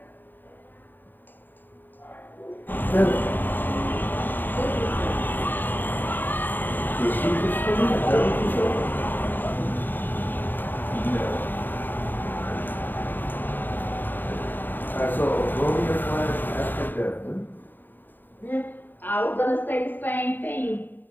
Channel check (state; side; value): late; right; 0.091 ms